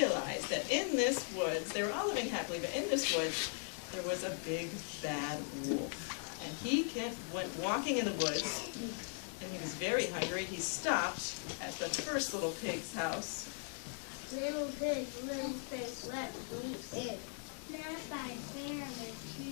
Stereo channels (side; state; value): right; silent; 52 dB below the other